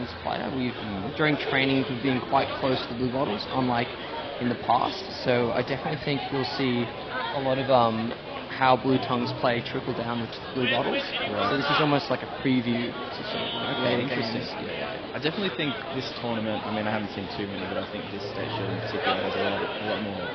player, during training we've been quite close to the Bluebottles, unlike in the past. So I definitely think you'll see a lot of how Blue Tongues play trickle down with Bluebottles. Right. So this is almost like a preview to sort of later games. I definitely think this tournament, I haven't seen too many, but I think this stage in particular has a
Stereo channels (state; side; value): identical; both; correlation 1.00